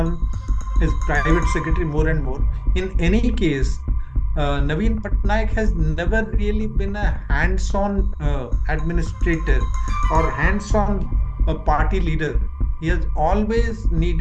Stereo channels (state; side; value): identical; both; correlation 1.00